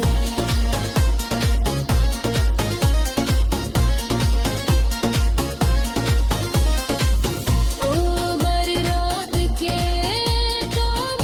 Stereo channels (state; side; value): identical; both; correlation 1.00